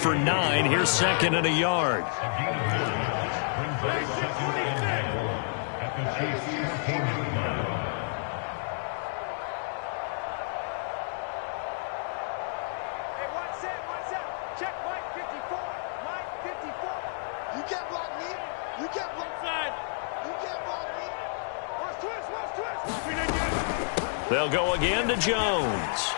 9. Here's second and a yard. They'll go again to Jones.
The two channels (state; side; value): silent; right; digital silence